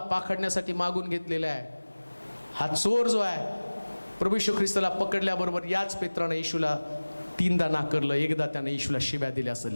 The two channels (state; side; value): inverted; both; correlation -1.00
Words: पाखडण्यासाठी मागून घेतलेला आहे. हा चोर जो आहे, प्रभू येशू ख्रिस्ताला पकडल्याबरोबर याच पेत्रानं येशूला 3दा नाकारलं, एकदा त्यानं येशूला शिव्या दिल्या, असं